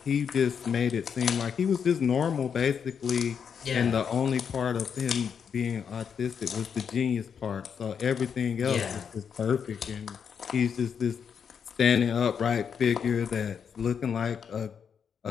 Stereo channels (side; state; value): right; quieter; 7.1 dB